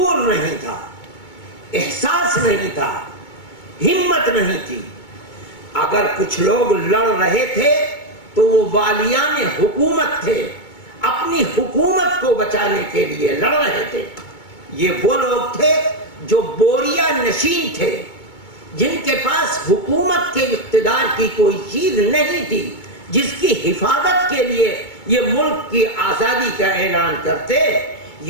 نہیں تھا، احساس نہیں تھا، ہمت نہیں تھی۔ اگر کچھ لوگ لڑ رہے تھے تو وہ والیان حکومت تھے، اپنی حکومت کو بچانے کے لیے لڑ رہے تھے۔ یہ وہ لوگ تھے جو بوریا نشین تھے، جن کے پاس حکومت کے اقتدار کی کوئی چیز نہیں تھی، جس کی حفاظت کے لیے یہ ملک کی آزادی کا اعلان کرتے۔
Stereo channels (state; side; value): late; right; 2.2 ms